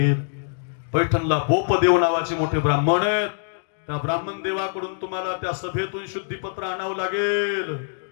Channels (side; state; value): right; silent; digital silence